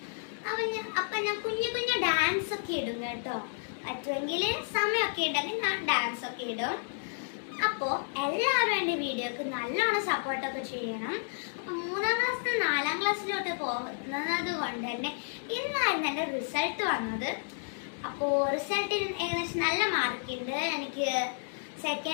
അപ്പം ഞാൻ കുഞ്ഞു കുഞ്ഞു ഡാൻസ് ഒക്കെ ഇടും കേട്ടോ. പറ്റുമെങ്കിൽ സമയമൊക്കെ ഉണ്ടെങ്കിൽ ഞാൻ ഡാൻസ് ഒക്കെ ഇടും. അപ്പോൾ എല്ലാവരും എൻ്റെ വീഡിയോക്ക് നല്ലോണം സപ്പോർട്ടൊക്കെ ചെയ്യണം. അപ്പം 3ാം ക്ലാസ്സിൽ 4ാം ക്ലാസ്സിലോട്ട് പോകുന്നത് കൊണ്ട് തന്നെ ഇന്നായിരുന്നു എൻ്റെ റിസൾട്ട് വന്നത്. അപ്പോൾ റിസൾട്ടിൽ ഏകദേശം നല്ല മാർക്കുണ്ട്. എനിക്ക്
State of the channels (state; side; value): silent; right; 57 dB below the other